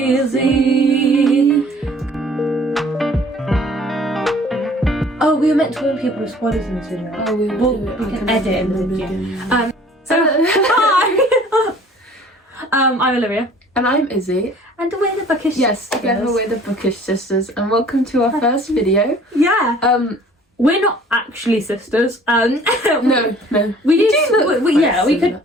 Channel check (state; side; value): normal; both; correlation 0.52